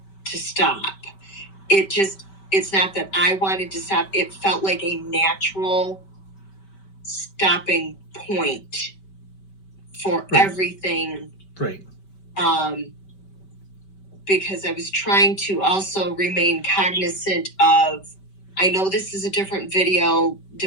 to stop. It's not that I wanted to stop. It felt like a natural stopping point for everything. Right. Because I was trying to also remain cognizant of, I know this is a different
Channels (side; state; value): right; late; 5.2 ms